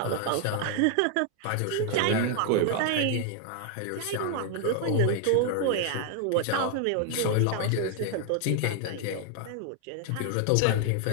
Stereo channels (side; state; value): both; different; correlation 0.00